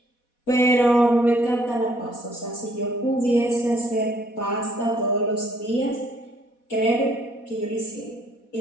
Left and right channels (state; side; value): late; right; 4.1 ms